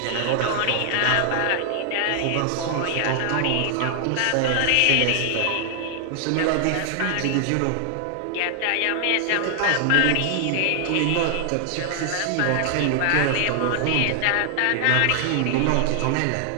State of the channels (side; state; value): both; different; correlation 0.00